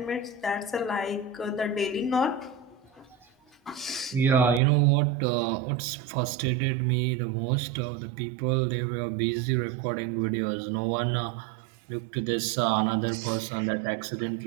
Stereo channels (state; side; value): drops out; left; at 4.6 s